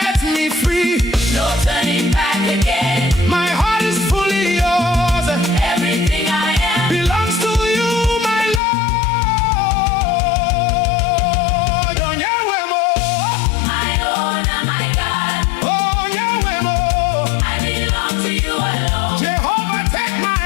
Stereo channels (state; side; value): drops out; right; at 8.6 s